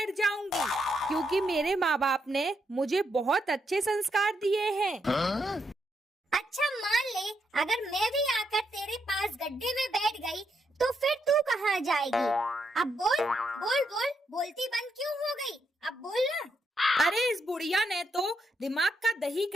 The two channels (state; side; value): normal; both; correlation 0.80